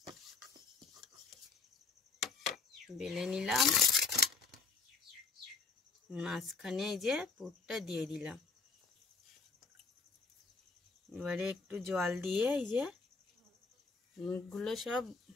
বেলে নিলাম, মাঝখানে এই যে পুরটা দিয়ে দিলাম। এবারে একটু জল দিয়ে এই যে মুখগুলো সব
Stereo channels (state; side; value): quieter; right; 4.6 dB